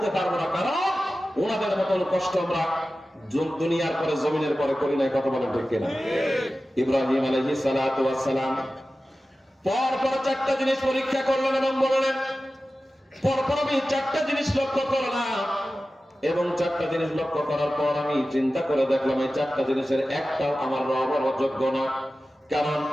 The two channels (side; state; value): both; normal; correlation 0.95